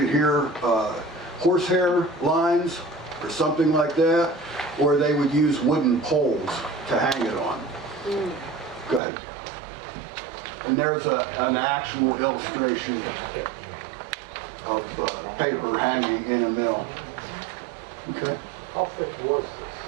here, horsehair lines or something like that, or they would use wooden poles to hang it on. Go ahead. And there's an actual illustration of paper hanging in a mill. Okay. How thick was this?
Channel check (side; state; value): left; drops out; at 9.0 s